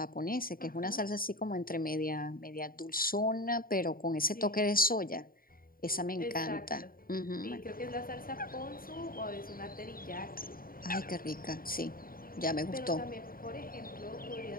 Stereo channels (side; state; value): right; late; 0.42 ms